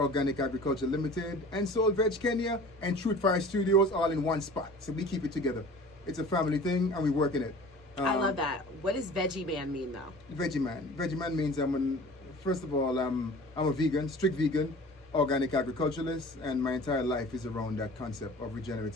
Agriculture Limited and Soul Veg Kenya and Truth Fire Studios all in one spot. So we keep it together. It's a family thing and we work in it. I love that. What does Veggie Man mean though? Veggie Man. Veggie Man means first of all, I'm a vegan, strict vegan, organic agriculturalist, and my entire life is around that concept of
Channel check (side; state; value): both; normal; correlation 0.43